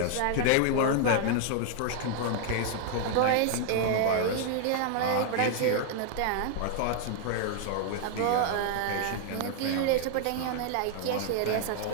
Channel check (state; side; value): different; both; correlation 0.00